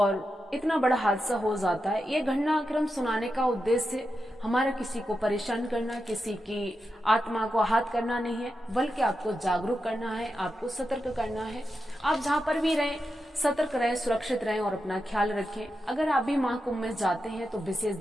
इतना बड़ा हादसा हो जाता है। ये घटनाक्रम सुनाने का उद्देश्य हमारा किसी को परेशान करना, किसी की आत्मा को आहत करना नहीं है, बल्कि आपको जागरूक करना है, आपको सतर्क करना है। आप जहां पर भी रहें सतर्क रहें, सुरक्षित रहें और अपना ख्याल रखें। अगर आप भी महाकुंभ में जाते हैं तो विशेष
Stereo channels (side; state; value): both; normal; correlation 0.88